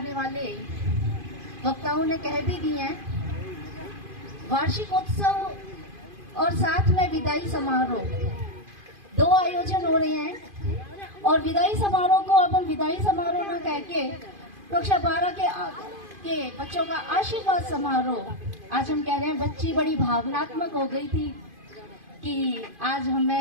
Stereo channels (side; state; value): left; late; 2.5 ms